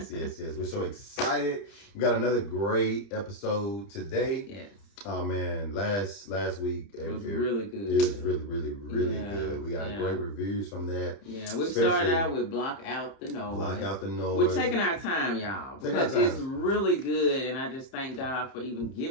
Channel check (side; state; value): right; late; 30 ms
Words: so excited. We got another great episode today. Yes. Oh man, last week it was really good. It was really good. We got great reviews from that. Yeah, we started out with Block Out the Noise. Block Out the Noise. We're taking our time, y'all, because it's really good, and I just thank God for even